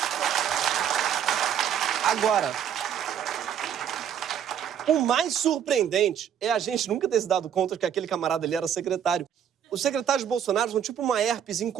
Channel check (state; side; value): quieter; left; 9.0 dB